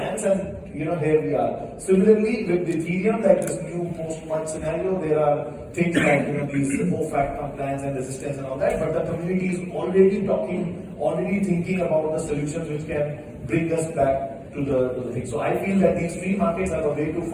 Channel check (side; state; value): both; identical; correlation 1.00